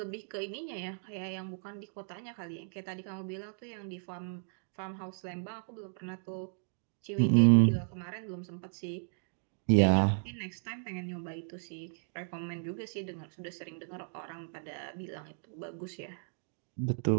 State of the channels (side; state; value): left; silent; digital silence